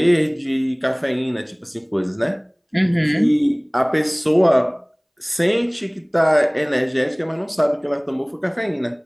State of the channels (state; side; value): identical; both; correlation 1.00